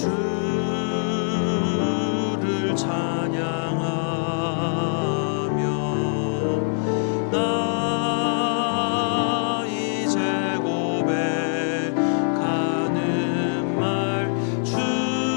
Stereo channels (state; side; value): silent; right; digital silence